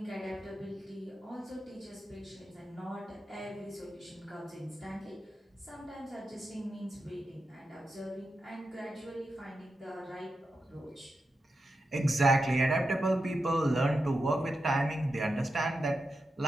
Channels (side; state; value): both; normal; correlation 0.88